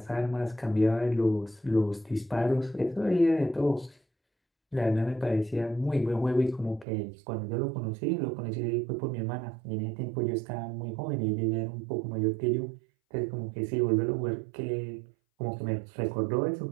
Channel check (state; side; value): drops out; left; at 6.9 s